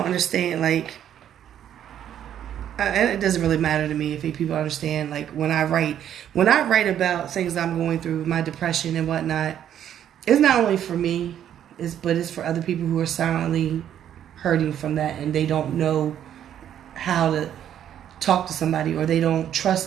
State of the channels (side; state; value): left; quieter; 10.2 dB